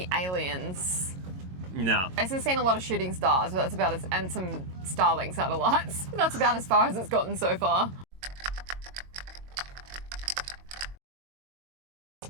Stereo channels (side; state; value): left; late; 22 ms